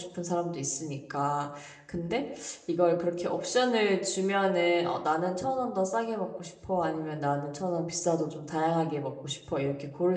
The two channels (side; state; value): both; identical; correlation 1.00